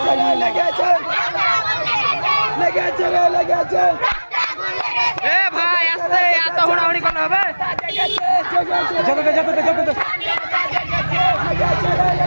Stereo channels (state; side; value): inverted; both; correlation -1.00